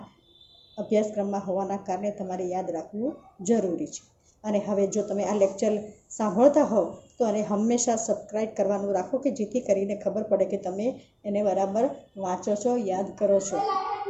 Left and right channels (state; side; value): identical; both; correlation 1.00